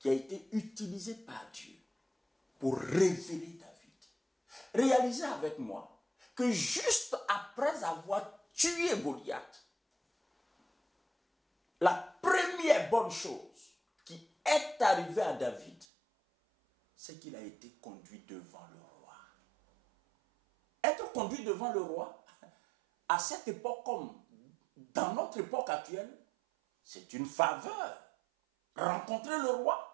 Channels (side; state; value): left; drops out; at 15.9 s